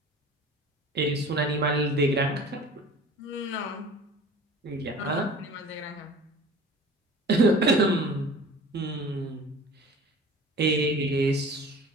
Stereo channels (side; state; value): both; normal; correlation 0.42